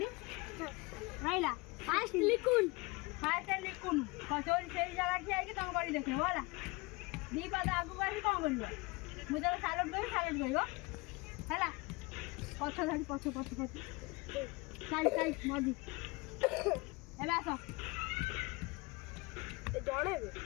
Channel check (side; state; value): right; quieter; 25.3 dB